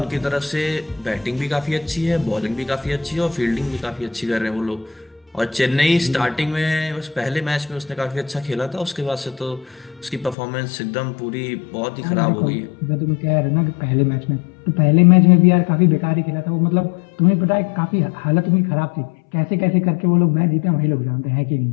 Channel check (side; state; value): right; drops out; at 10.4 s